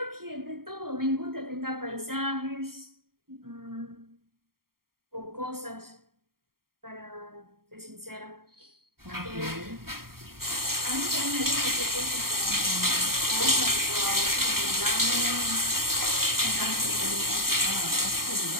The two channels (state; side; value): late; left; 0.93 ms